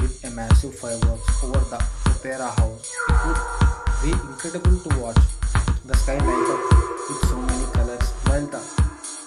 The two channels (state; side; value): identical; both; correlation 1.00